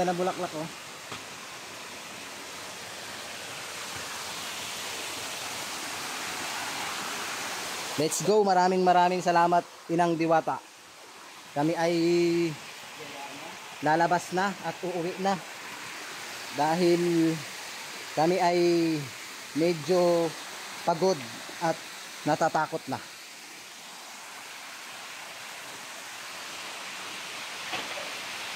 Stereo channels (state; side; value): identical; both; correlation 1.00